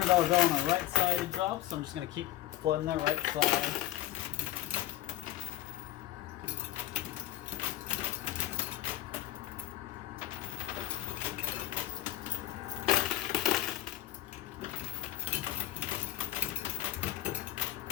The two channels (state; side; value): quieter; right; 14.1 dB